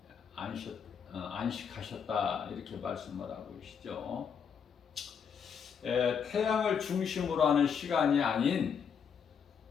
안식하셨다 이렇게 말씀을 하고 계시죠. 태양을 중심으로 하는 시간이 아닌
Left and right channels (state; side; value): quieter; right; 7.0 dB